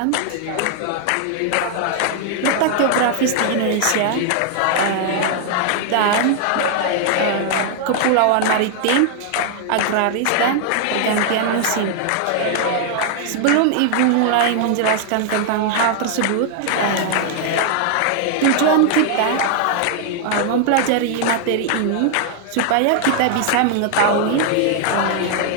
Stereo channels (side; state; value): both; different; correlation 0.00